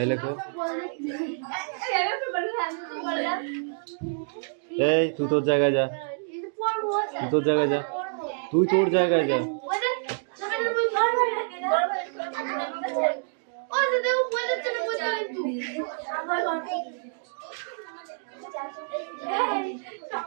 লেখো এই তুই তোর জায়গায় যা তুই তোর জায়গায় যা তুই তোর জায়গায় যা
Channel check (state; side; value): silent; left; digital silence